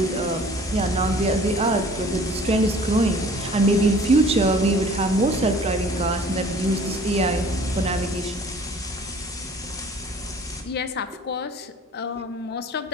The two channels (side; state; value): both; normal; correlation 0.50